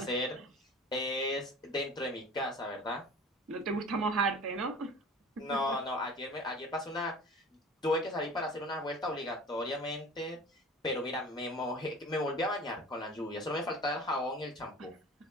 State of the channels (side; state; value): both; normal; correlation 0.41